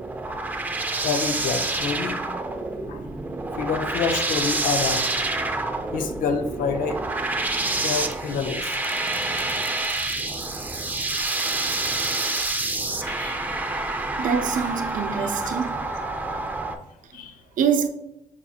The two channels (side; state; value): both; normal; correlation 0.23